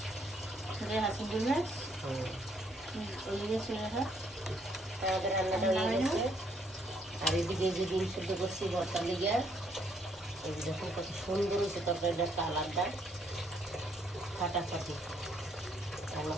রেহা চিংড়ি মাছ, ওই গেছে রেহা। আমাদের রান্নাটা হয়ে গেছে। আর এদিকে যে ডিম সিদ্ধ করছি ভর্তা লেগে, এই যে দেখুন কত সুন্দর হয়েছে তরকারিটা, কালারটা ফাটাফাটি। আমরা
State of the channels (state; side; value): normal; both; correlation 0.69